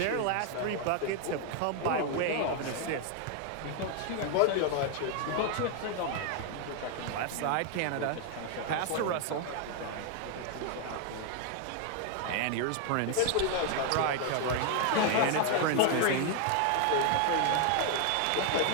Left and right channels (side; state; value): both; different; correlation 0.00